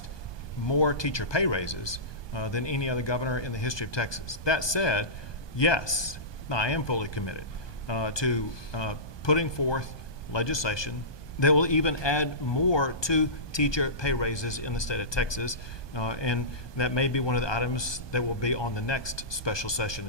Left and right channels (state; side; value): late; right; 1.2 ms